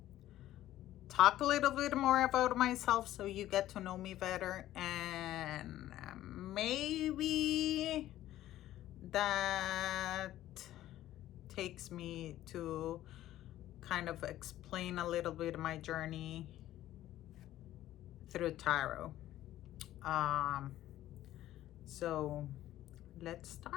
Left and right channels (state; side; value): quieter; right; 13.8 dB